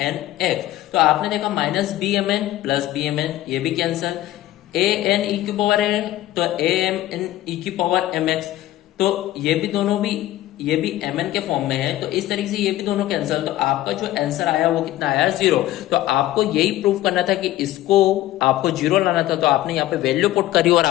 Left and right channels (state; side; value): quieter; right; 15.0 dB